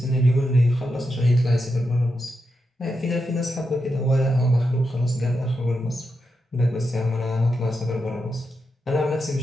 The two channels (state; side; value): normal; both; correlation 0.86